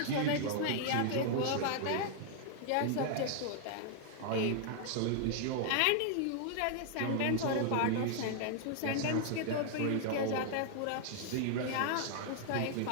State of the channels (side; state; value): both; different; correlation 0.00